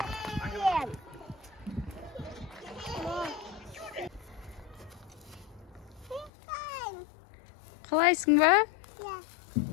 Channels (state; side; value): drops out; right; at 6.3 s